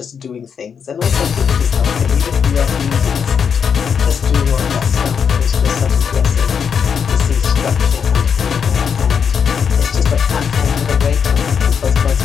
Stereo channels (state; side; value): quieter; right; 6.9 dB